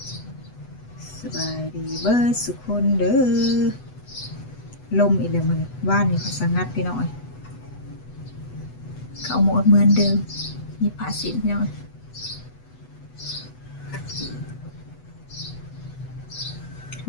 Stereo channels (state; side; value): late; right; 8.1 ms